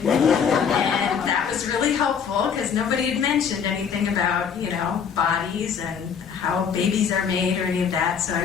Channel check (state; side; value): quieter; right; 7.0 dB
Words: and that was really helpful because nobody had mentioned anything about, bodies and how babies are made or any of that, so